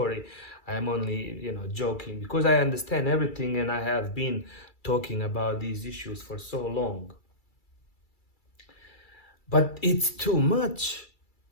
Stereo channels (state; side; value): late; right; 2.3 ms